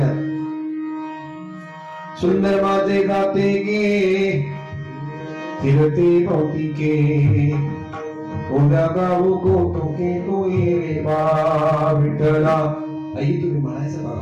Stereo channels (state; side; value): identical; both; correlation 1.00